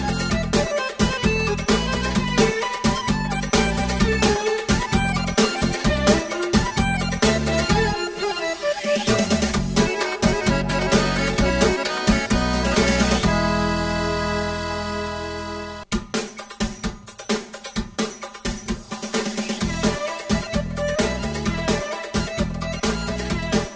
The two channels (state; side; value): identical; both; correlation 1.00